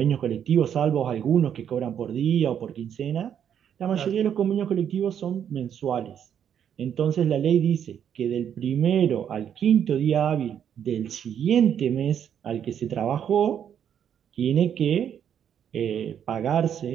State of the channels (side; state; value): left; quieter; 8.9 dB